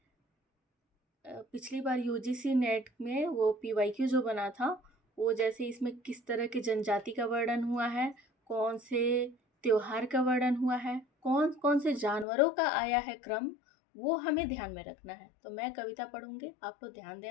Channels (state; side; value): drops out; right; at 12.2 s